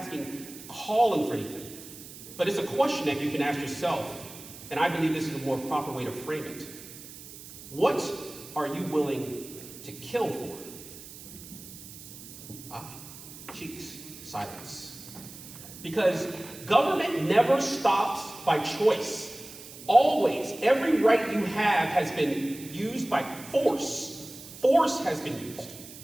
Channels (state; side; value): noise; right; hiss, 15 dB below the sound